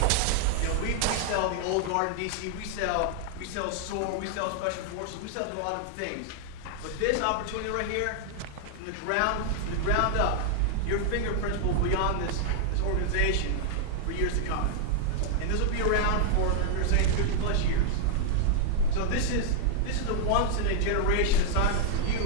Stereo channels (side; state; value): both; different; correlation 0.00